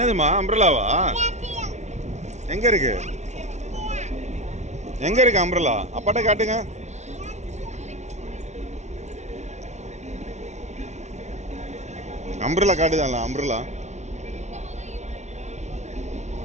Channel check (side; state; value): left; late; 0.33 ms